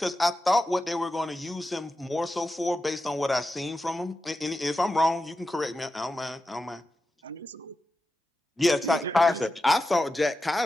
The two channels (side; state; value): both; normal; correlation 0.91